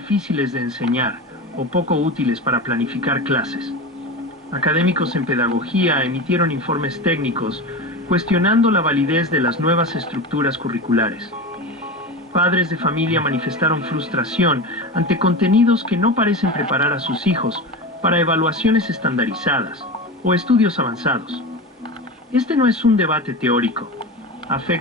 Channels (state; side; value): normal; both; correlation 0.25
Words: de enseñar o poco útiles para planificar clases. Académicos en pedagogía emitieron informes técnicos cuestionando la validez de las nuevas estructuras curriculares. Padres de familia manifestaron frustración ante contenidos que no parecen preparar a sus hijos para evaluaciones estandarizadas o estudios avanzados. Este no es un debate teórico.